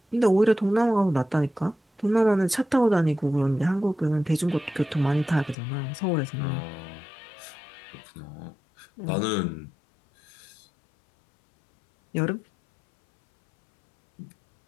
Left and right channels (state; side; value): drops out; right; at 5.6 s